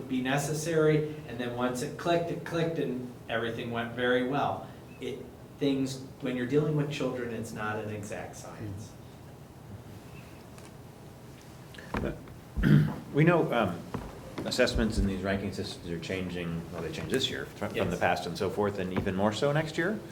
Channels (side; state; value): both; identical; correlation 1.00